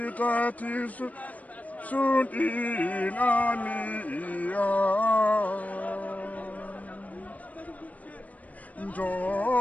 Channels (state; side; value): late; right; 0.072 ms